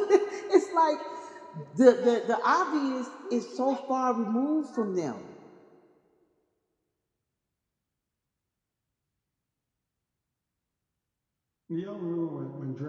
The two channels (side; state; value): both; identical; correlation 1.00